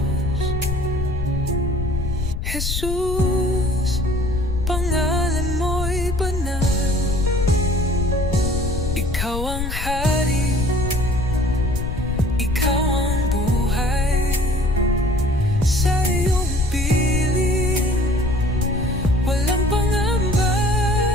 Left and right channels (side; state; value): left; noise; rumble, 3 dB below the sound